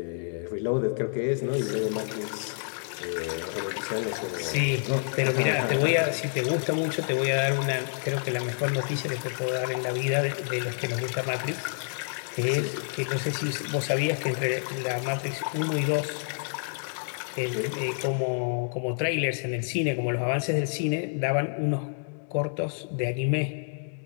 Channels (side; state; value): right; silent; digital silence